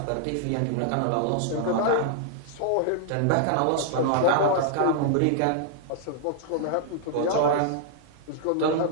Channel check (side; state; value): both; different; correlation -0.01